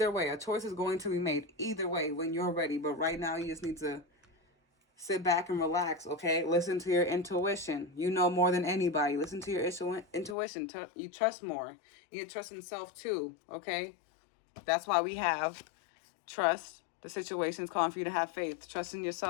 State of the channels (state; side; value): drops out; right; at 10.4 s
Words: way, a choice is going to be made. Either way, when you're ready. But right now, you just need to sit back and relax. Okay, listen to your intuition. You know more than anybody. Listen to your intuition. You trust more. You trust in self too. Okay, that's why we have trust. The situation is calling for you to have faith. Trust in